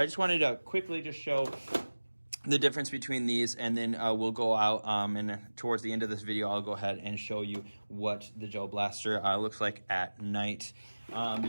I just wanted to quickly just show the difference between these, and then we'll go out and towards the end of this video I'll go ahead and show you what the gel blaster looks like at night. You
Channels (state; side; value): inverted; both; correlation -1.00